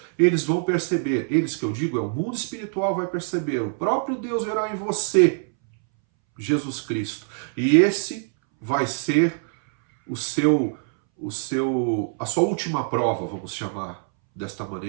eles vão perceber. Eles que eu digo, é o mundo espiritual vai perceber. O próprio Deus verá em você Jesus Cristo. E esse vai ser a sua última prova, vamos chamar desta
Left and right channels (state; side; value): silent; left; 62 dB below the other